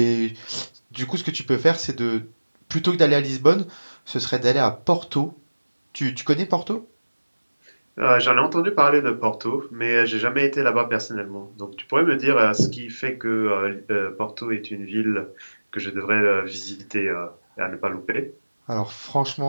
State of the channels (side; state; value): both; inverted; correlation -1.00